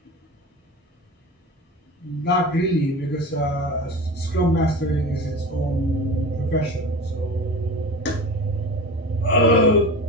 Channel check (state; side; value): normal; both; correlation 0.32